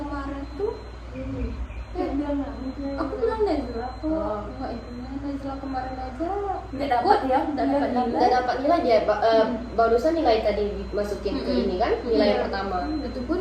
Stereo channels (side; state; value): both; identical; correlation 1.00